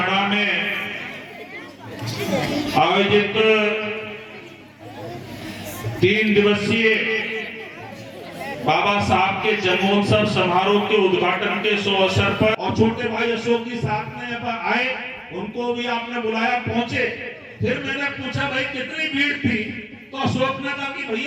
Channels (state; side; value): identical; both; correlation 1.00